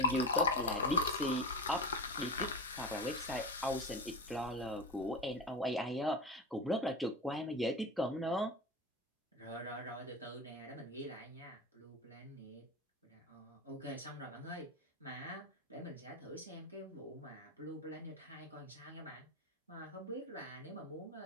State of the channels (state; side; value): normal; both; correlation 0.25